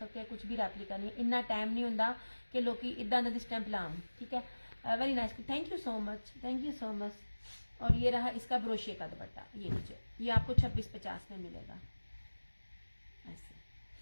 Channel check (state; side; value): inverted; both; correlation -1.00